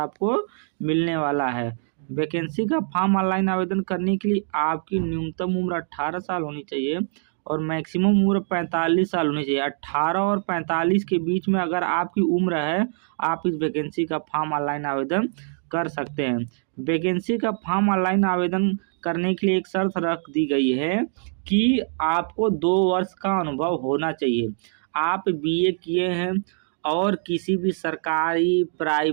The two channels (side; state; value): left; silent; digital silence